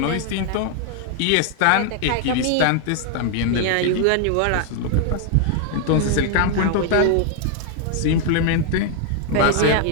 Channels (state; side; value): different; both; correlation 0.00